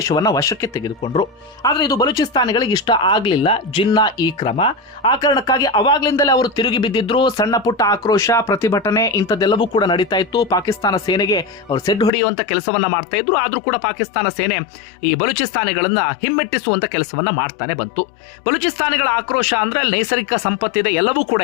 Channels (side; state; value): right; drops out; at 12.1 s